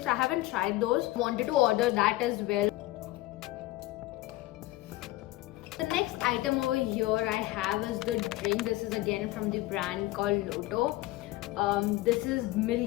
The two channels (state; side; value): quieter; right; 18.0 dB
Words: I haven't tried those. Wanted to order that as well. The next item over here I have is the drink. This is again from the brand called Lotto. This is